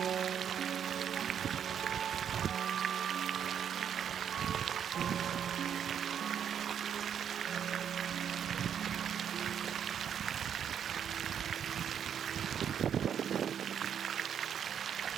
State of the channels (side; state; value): left; quieter; 8.5 dB